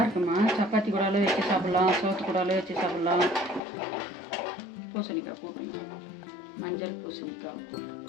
இருக்குமா, சப்பாத்தி கூடாலும் வச்சு சாப்பிட்லாம், சோத்து கூடாலும் வச்சு சாப்பிட்லாம். பூசணிக்காய் கூட்டு, மஞ்சள் பூசணிக்காய் கூட்டு.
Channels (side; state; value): right; drops out; at 3.6 s